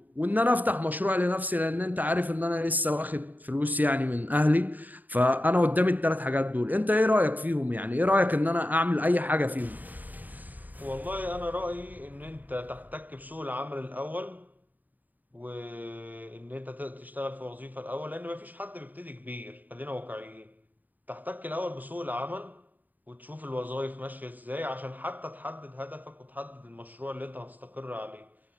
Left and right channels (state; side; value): late; left; 0.083 ms